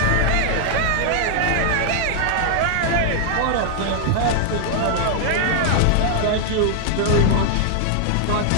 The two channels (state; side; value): different; both; correlation -0.01